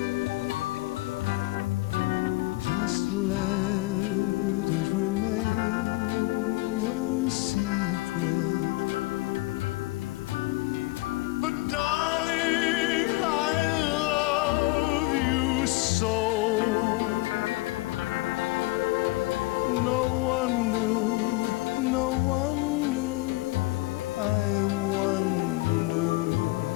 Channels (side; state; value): right; quieter; 21.2 dB